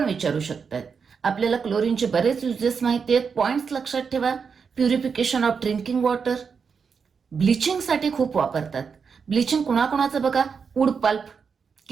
विचारू शकतात. आपल्याला क्लोरीनचे बरेच युजेस माहिती आहेत, पॉइंट्स लक्षात ठेवा. प्युरिफिकेशन ऑफ ड्रिंकिंग वॉटर, ब्लिचिंगसाठी खूप वापरतात. ब्लिचिंग कुणाकुणाचं बघा, वूड पल्प,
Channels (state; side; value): quieter; left; 5.9 dB